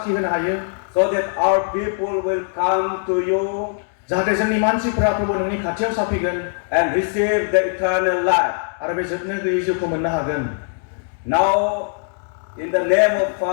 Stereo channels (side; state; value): right; silent; digital silence